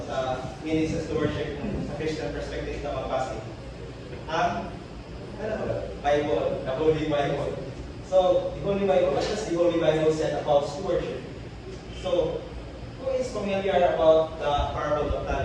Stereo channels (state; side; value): identical; both; correlation 1.00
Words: meaning sa stewardship sa Christian perspective na magbase. Ang Bible, the Holy Bible. So, the Holy Bible, what does the Holy Bible say about stewardship? So, who is familiar about the parable of